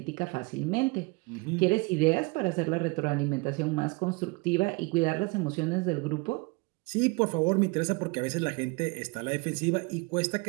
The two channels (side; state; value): left; quieter; 26.9 dB